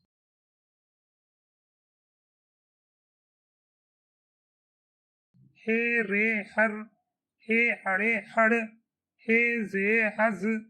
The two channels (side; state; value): both; identical; correlation 1.00